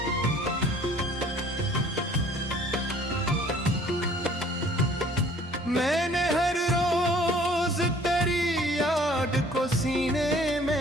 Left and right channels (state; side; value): normal; both; correlation 0.54